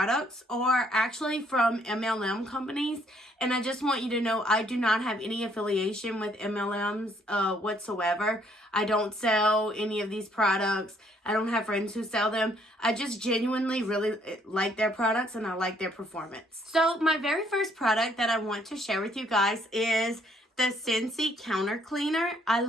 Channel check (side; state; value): both; normal; correlation 0.66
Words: are actually from MLM companies, and I just want you to know I do not have any affiliation with MLMs whatsoever. I don't sell any of these products. I don't have friends who sell them. I just genuinely really like their products and I like their performance. So my very first product that I want to share with you guys is the Scentsy counter cleaner. I